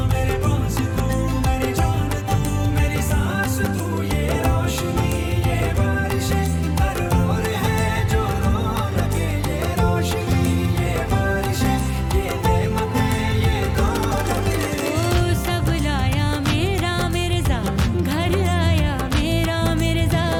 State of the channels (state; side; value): identical; both; correlation 1.00